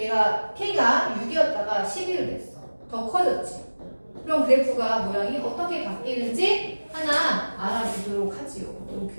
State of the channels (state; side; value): inverted; both; correlation -1.00